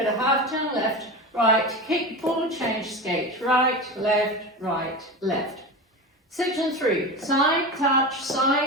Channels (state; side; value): normal; both; correlation 0.26